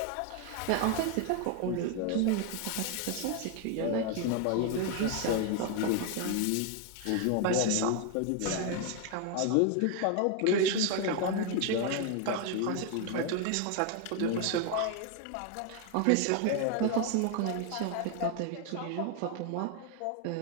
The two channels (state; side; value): different; both; correlation 0.01